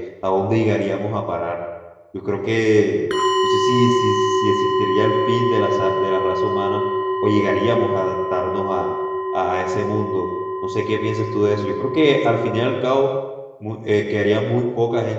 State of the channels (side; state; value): both; identical; correlation 1.00